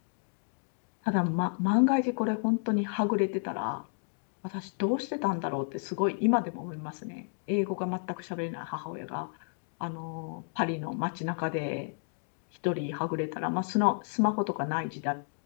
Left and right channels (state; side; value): silent; right; digital silence